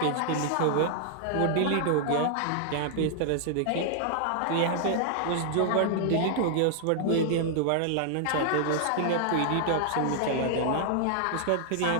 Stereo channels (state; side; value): different; both; correlation 0.00